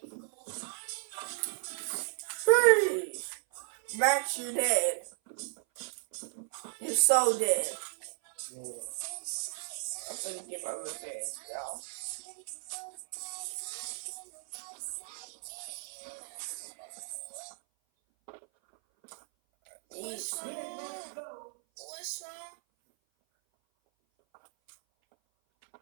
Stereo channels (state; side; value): silent; left; 55 dB below the other